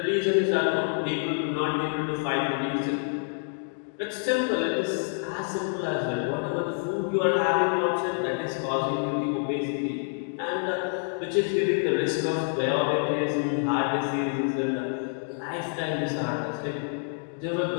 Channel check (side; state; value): right; silent; digital silence